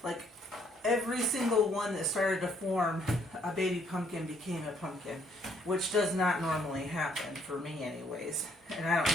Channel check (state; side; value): normal; both; correlation 0.67